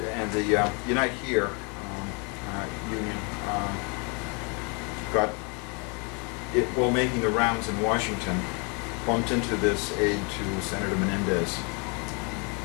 Here union got it, while making the rounds in Washington, bumped into this aide to Senator Menendez.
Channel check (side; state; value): right; quieter; 33.4 dB